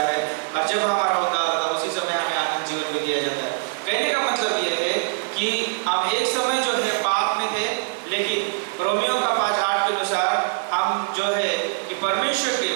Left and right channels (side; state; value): left; silent; 63 dB below the other